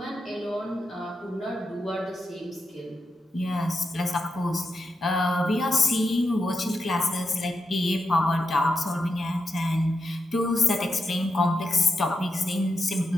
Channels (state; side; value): normal; both; correlation 0.86